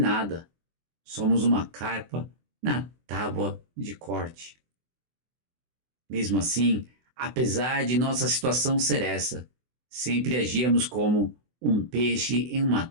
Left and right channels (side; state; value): left; late; 24 ms